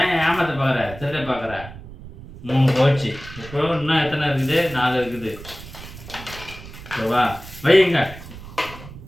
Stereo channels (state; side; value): noise; right; rumble, 15 dB below the sound